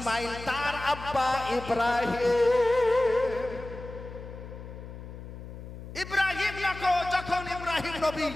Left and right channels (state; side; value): noise; left; hum, 12 dB below the sound